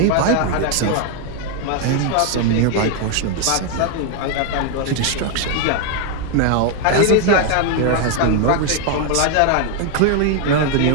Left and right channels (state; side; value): different; both; correlation 0.00